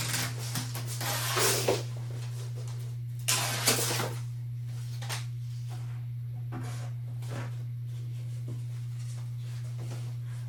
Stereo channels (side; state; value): both; identical; correlation 1.00